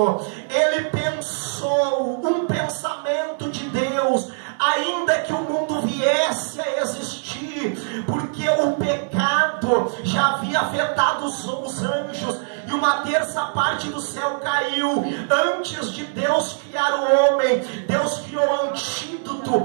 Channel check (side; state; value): left; silent; digital silence